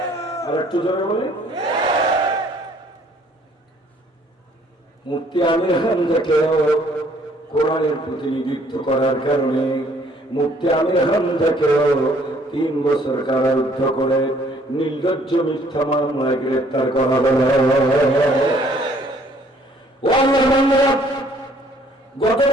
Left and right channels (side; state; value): both; normal; correlation 0.61